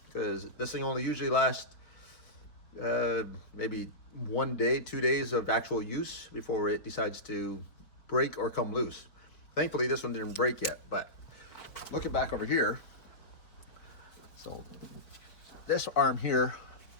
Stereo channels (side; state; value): right; late; 4.3 ms